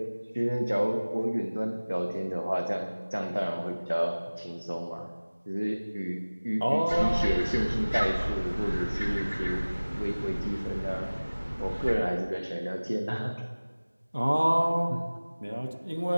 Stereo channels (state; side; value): inverted; both; correlation -1.00